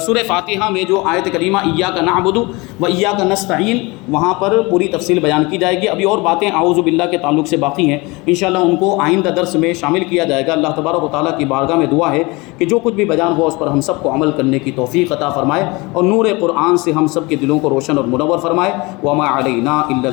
سورہ فاتحہ میں جو آیت کریمہ ایاک نعبد و ایاک نستعین، وہاں پر پوری تفصیل بیان کی جائے گی۔ ابھی اور باتیں اعوذ باللہ کے تعلق سے باقی ہیں، انشاءاللہ ان کو آئندہ درس میں شامل کیا جائے گا۔ اللہ تبارک و تعالیٰ کی بارگاہ میں دعا ہے کہ جو کچھ بھی بیان ہوا اس پر ہم سب کو عمل کرنے کی توفیق عطا فرمائے، اور نور قرآن سے ہم سب کے دلوں کو روشن اور منور فرمائے۔ وما علینا الا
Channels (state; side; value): quieter; right; 24.8 dB